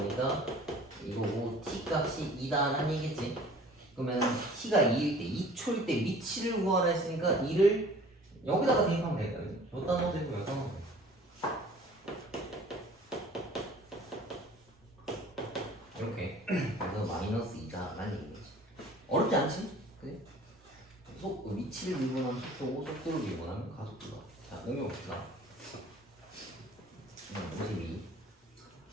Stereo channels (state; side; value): normal; both; correlation 0.49